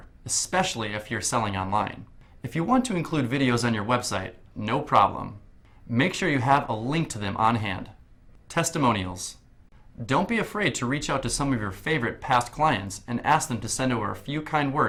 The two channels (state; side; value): identical; both; correlation 1.00